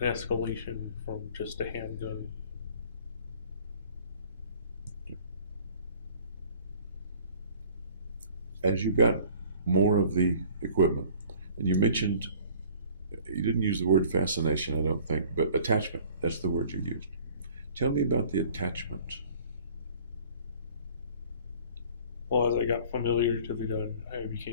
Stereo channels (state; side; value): inverted; both; correlation -0.51